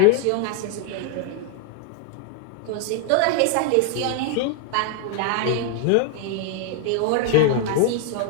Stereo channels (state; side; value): different; both; correlation 0.00